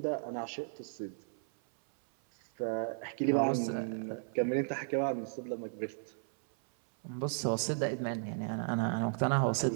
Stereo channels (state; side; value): silent; left; 55 dB below the other